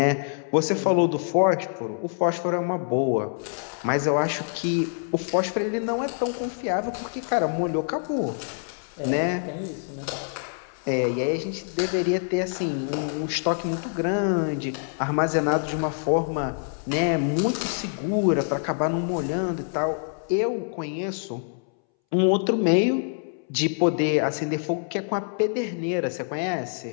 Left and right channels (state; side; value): silent; right; 61 dB below the other